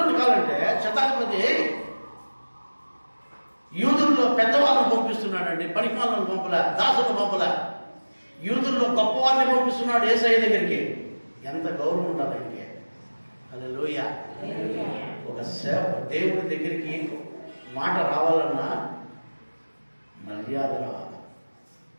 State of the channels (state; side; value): inverted; both; correlation -1.00